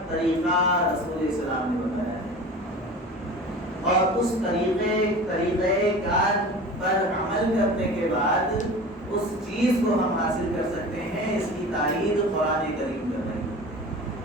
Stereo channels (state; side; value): normal; both; correlation 0.37